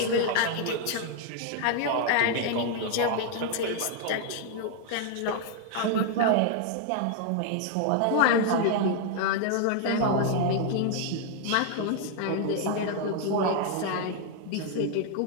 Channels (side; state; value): both; different; correlation 0.00